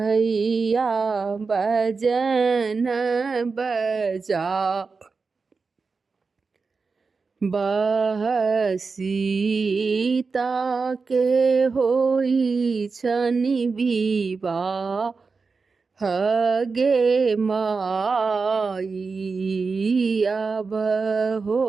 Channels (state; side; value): quieter; left; 4.6 dB